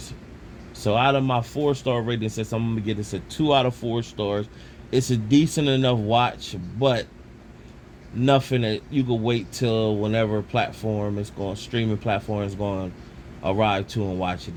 So out of my 4-star rating system, I'm going to give this a 2 out of 4 stars. It's a decent enough watch, but nothing that you could wait till whenever streaming platform is going to arrive to and watch it.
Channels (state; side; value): identical; both; correlation 1.00